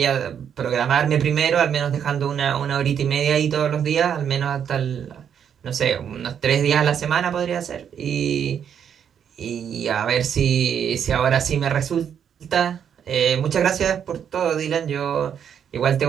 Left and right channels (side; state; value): left; quieter; 8.3 dB